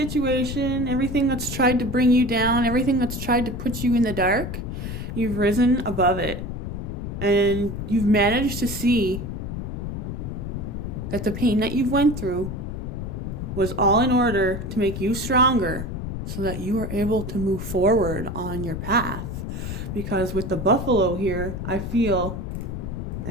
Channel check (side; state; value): left; noise; rumble, 5 dB below the sound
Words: everything that's tried to bring you down, everything that's tried to put you in the dark, you've risen above it. And you've managed to see that the pain that you've went through was all in order to make you stronger so that you are able to move forward on your path. Because with the buffalo here, I feel,